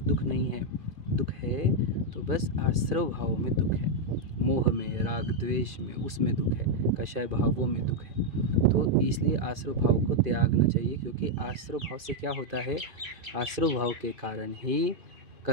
दुख नहीं है। दुख है तो बस आश्रव भावों में दुख है, मोह में, राग द्वेष में, उसमें दुख है, कषाय भावों में दुख है। तो इसलिए आश्रव भाव को त्यागना चाहिए, क्योंकि आश्रव भाव से क्या होता है, आश्रव भाव के कारण ही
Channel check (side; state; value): left; late; 2.5 ms